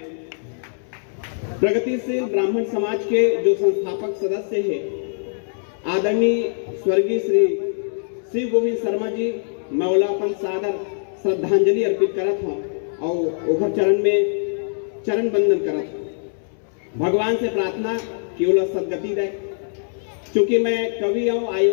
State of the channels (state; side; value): silent; right; 64 dB below the other